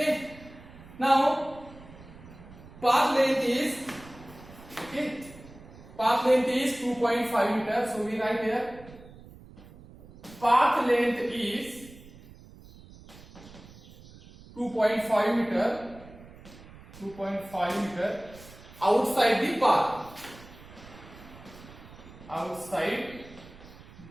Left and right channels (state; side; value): noise; right; rumble, 19 dB below the sound